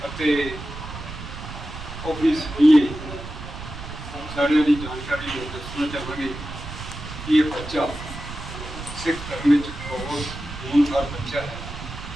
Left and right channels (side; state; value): right; noise; rumble, 10 dB below the sound